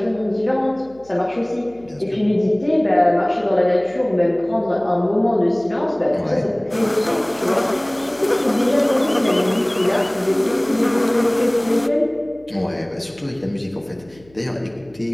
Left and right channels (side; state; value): left; noise; hum, 27 dB below the sound